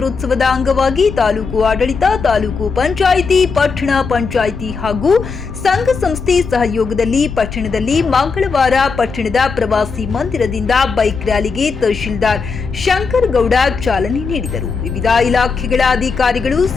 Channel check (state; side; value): quieter; right; 4.9 dB